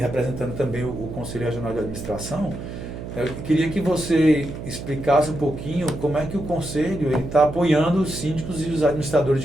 também o Conselho Regional de Administração, eu queria que você explicasse um pouquinho como é que o Conselho está apoiando os síndicos e os administradores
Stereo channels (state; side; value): noise; right; hum, 9 dB below the sound